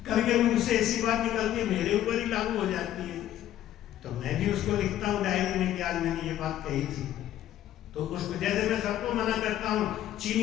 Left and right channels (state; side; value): quieter; right; 12.3 dB